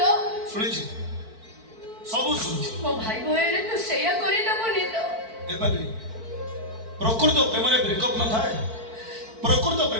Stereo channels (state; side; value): late; left; 4.5 ms